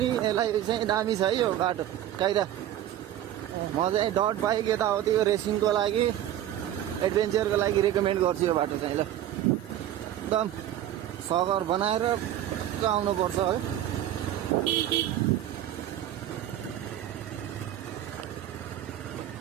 यसलाई चाहिँ दामी छ है यो बाटो काइदा म चाहिँ डट बाइक यताउति यो रेसिङको लागि एडभेन्चरको लागि रेकमेन्ड गर्छु यो बाटो चाहिँ ल एकदम सगर बनाएर आउनुपर्छ है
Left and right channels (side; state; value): left; quieter; 12.0 dB